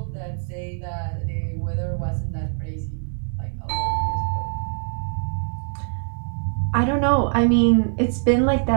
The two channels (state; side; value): silent; left; 63 dB below the other